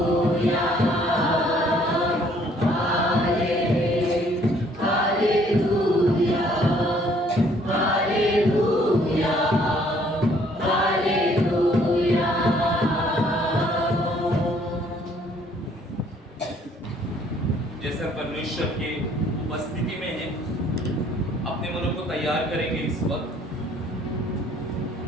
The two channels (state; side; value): normal; both; correlation 0.62